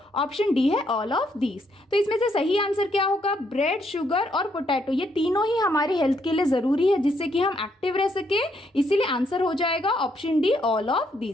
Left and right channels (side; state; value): both; normal; correlation 0.74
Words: ऑप्शन डी है ऑल ऑफ दीज। तो इसमें से सही आंसर क्या होगा? ब्रेड, शुगर और पोटैटो, ये तीनों ही हमारी हेल्थ के लिए जरूरी है जिससे कि हम एक्टिव रह सके, इसीलिए आंसर हो जाएगा option D all of